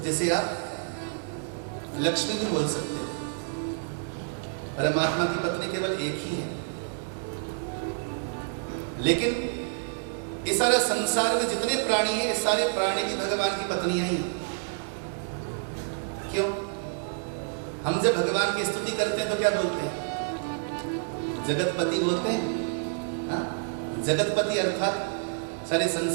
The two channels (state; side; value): silent; left; 59 dB below the other